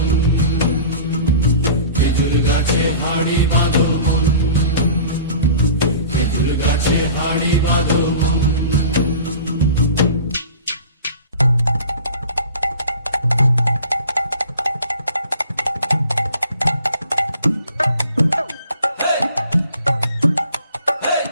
খেজুর গাছে হাড়ি বাঁধো মন, খেজুর গাছে হাড়ি বাঁধো মন।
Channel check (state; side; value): inverted; both; correlation -0.42